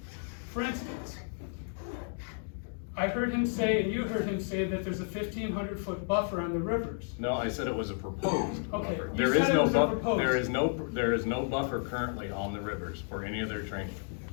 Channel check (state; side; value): silent; right; 56 dB below the other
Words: For instance, I heard him say, and you heard him say, that there's a 1,500-foot buffer on the rivers. No, I said it was a proposed Okay, buffer. you said it was a proposed. There is no buffer currently on the rivers for any of their training.